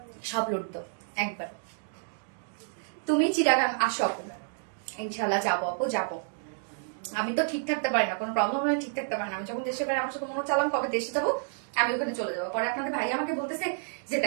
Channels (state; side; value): silent; left; digital silence